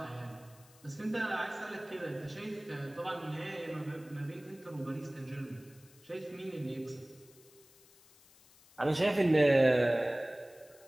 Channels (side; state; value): left; noise; hiss, 26 dB below the sound